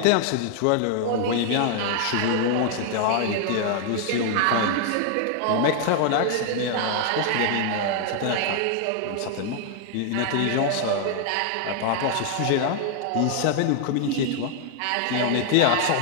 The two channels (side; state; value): both; different; correlation 0.00